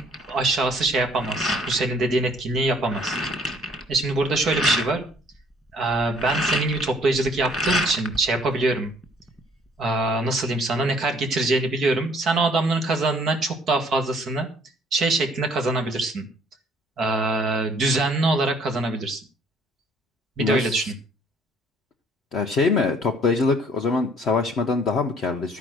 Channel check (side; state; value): both; normal; correlation 0.59